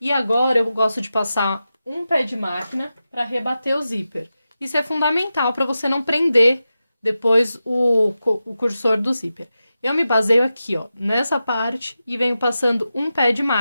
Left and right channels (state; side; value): inverted; both; correlation -0.92